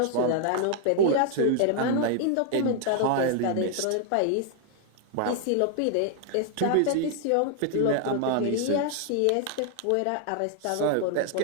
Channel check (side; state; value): both; different; correlation 0.00